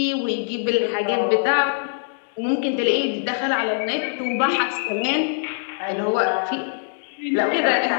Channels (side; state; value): right; silent; digital silence